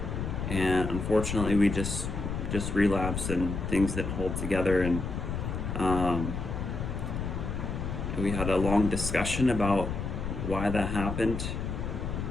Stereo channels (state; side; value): noise; left; rumble, 4 dB below the sound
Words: and unfortunately we just relapsed and things didn't hold together. And we had a long discussion about why that happened,